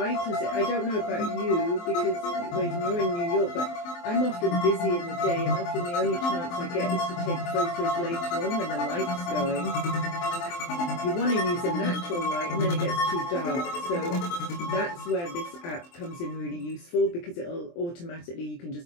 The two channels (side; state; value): right; late; 23 ms